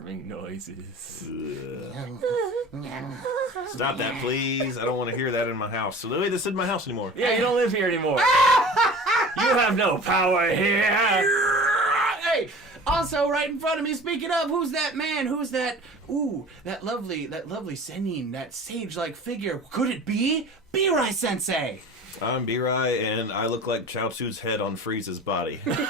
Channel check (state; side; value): normal; both; correlation 0.41